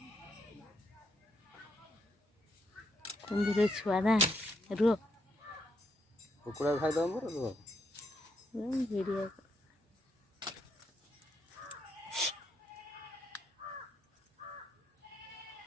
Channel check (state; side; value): normal; both; correlation 0.78